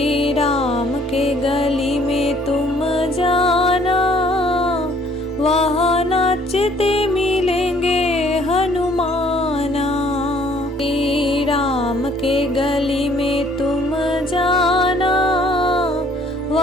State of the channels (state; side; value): normal; both; correlation 0.60